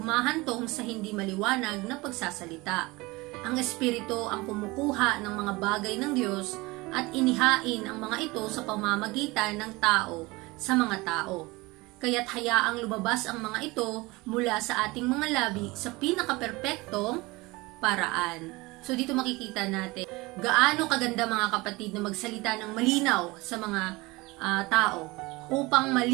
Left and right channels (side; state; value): left; quieter; 22.8 dB